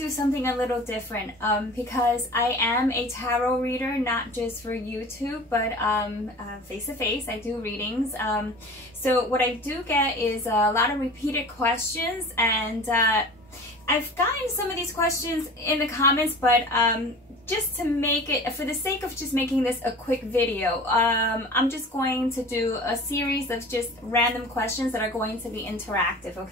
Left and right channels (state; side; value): normal; both; correlation 0.39